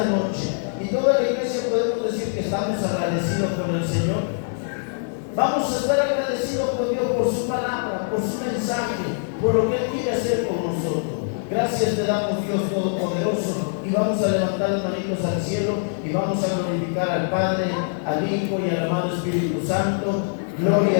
noche. Y toda la iglesia podemos decir que estamos agradecidos con el Señor. Vamos a estar agradecidos con Dios por su palabra, por su mensaje, por lo que Él quiere hacer con nosotros. Gracias te damos, Dios Todopoderoso, y vamos a levantar las manitos al cielo y vamos a glorificar al Padre, al Hijo y al amado Espíritu Santo. Gloria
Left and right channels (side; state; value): right; silent; digital silence